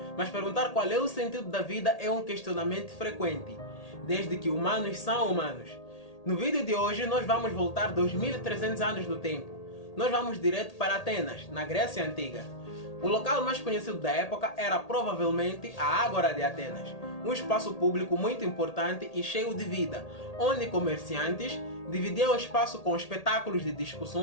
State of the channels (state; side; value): late; right; 1.8 ms